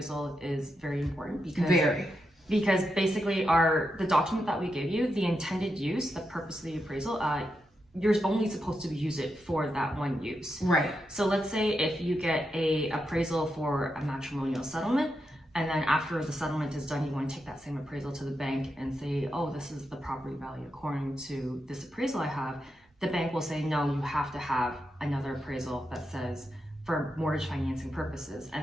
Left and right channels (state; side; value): normal; both; correlation 0.85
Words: is very important because basically the document that we give you, the intended use, the purpose of the appraisal, you're only supposed to use it for that one use. Right. So let's say if you get a appraisal for a matrimonial settlement, and then after the settlement is done, you want to take that same appraisal to the bank and say, oh, this is the property value according to this appraisal I have. The bank will say, no, you have to have another appraisal that says for mortgage financing purposes.